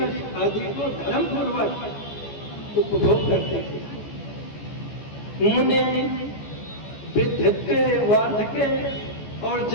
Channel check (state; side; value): late; right; 14 ms